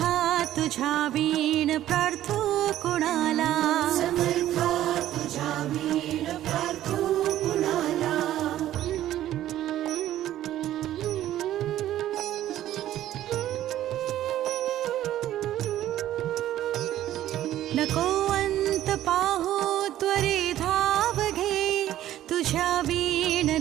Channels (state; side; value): quieter; left; 12.9 dB